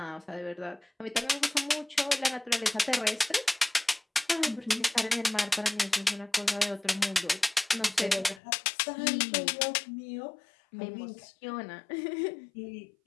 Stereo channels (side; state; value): right; drops out; at 8.4 s